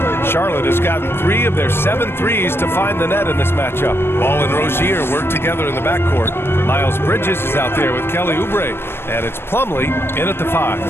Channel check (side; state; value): right; late; 0.11 ms